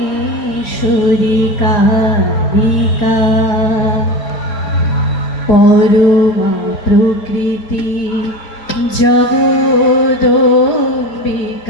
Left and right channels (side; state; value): right; late; 4.3 ms